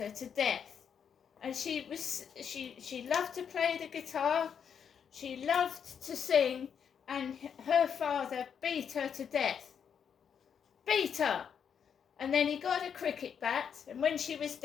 to death. And she loved to play the guitar, she loved to sing, and her father beat her to death. Beat her! And then he got a cricket bat, and when she was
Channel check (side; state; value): right; quieter; 7.5 dB